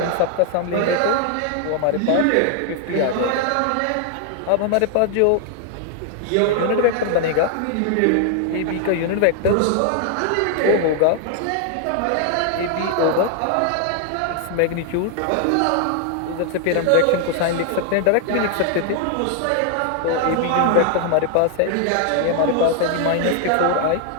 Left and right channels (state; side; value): different; both; correlation 0.00